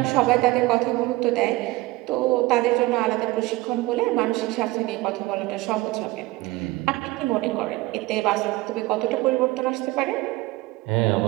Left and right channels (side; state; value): left; quieter; 20.0 dB